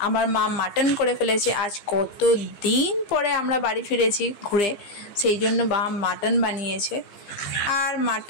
আমার মা মাটন করে ফেলেছে। আজ কত দিন পরে আমরা বাড়ি ফিরেছি ঘুরে, সেই জন্য মা মাটন বানিয়েছে। আর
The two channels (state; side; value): late; right; 15 ms